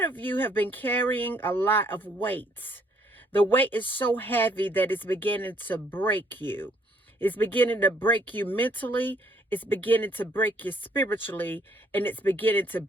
of you have been carrying a lot of weight. The weight is so heavy that it's beginning to break you. It's beginning to break you mentally. It's beginning to break you spiritually. And it's beginning to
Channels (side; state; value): both; normal; correlation 0.66